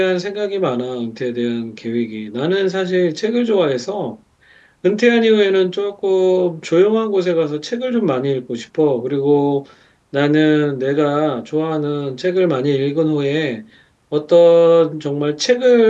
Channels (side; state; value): both; identical; correlation 1.00